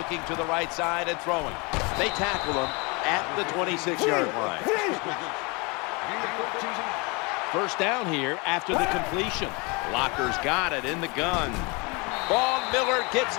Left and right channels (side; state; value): right; quieter; 28.8 dB